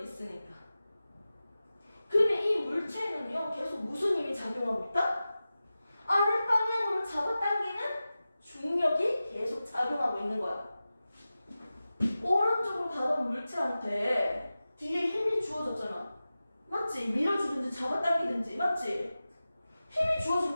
있으니까. 그러면 이 물체는요 계속 무슨 힘이 작용하고 있다? 아랫 방향으로 잡아당기는 중력이 계속 작용하고 있는 거야. 오른쪽으로 가던 물체한테 뒤에 힘이 주어졌잖아. 맞지? 밀어주든지 잡아당기든지. 맞지? 힘이 주어진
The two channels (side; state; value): both; inverted; correlation -0.95